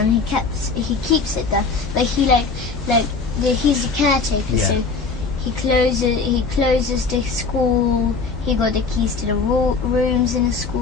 he keeps it there. But he's the caretaker, Yeah. so he closes the school. He got the keys to the rooms in the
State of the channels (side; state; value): right; quieter; 4.5 dB